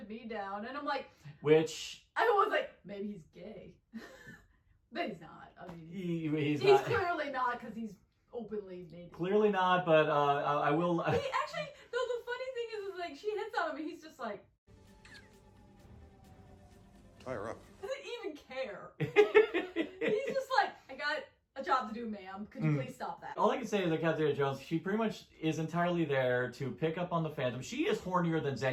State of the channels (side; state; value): both; identical; correlation 1.00